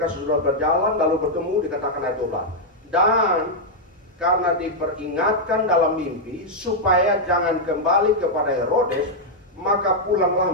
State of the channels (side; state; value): both; normal; correlation -0.03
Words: sudah berjalan lalu bertemu, dikatakan ayat 12. Dan karena diperingatkan dalam mimpi supaya jangan kembali kepada Herodes, maka pulanglah